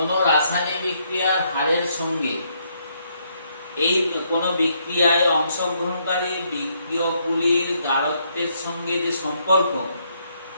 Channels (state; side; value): inverted; both; correlation -0.73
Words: রাসায়নিক বিক্রিয়ার হারের সঙ্গে এই কোন বিক্রিয়ায় অংশগ্রহণকারী বিক্রিয়কগুলির গাঢ়ত্বের সঙ্গে যে সম্পর্ক